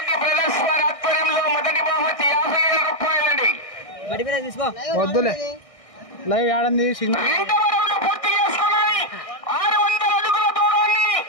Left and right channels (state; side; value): late; right; 1.6 ms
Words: బ్రదర్స్ వారి ఆధ్వర్యంలో మొదటి బహుమతి 50,000 రూపాయలండి. వద్దులే లైవ్ ఆడంది పూర్తి చేసుకున్నాయి. 600 అడుగుల దూరాన్ని